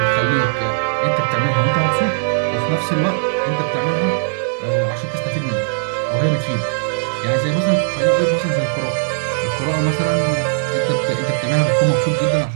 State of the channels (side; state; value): left; silent; digital silence